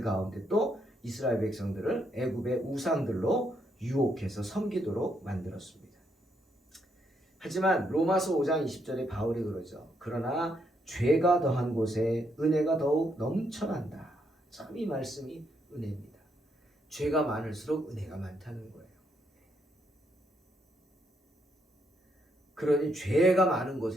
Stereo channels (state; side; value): normal; both; correlation 0.76